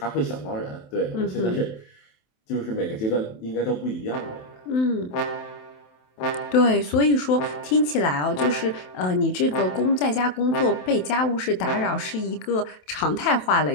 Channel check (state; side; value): late; right; 27 ms